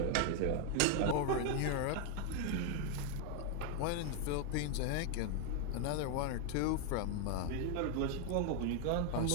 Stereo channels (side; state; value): both; different; correlation 0.01